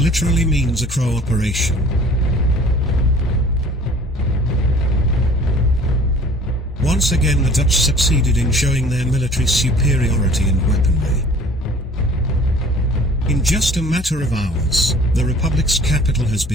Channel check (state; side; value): normal; both; correlation 0.50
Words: means a crow operation. Once again, the Dutch succeeded in showing their military superiority and weaponry. In just a matter of hours, the Republic's capital has